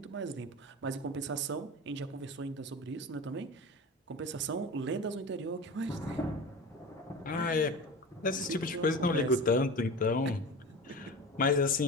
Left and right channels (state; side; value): normal; both; correlation 0.31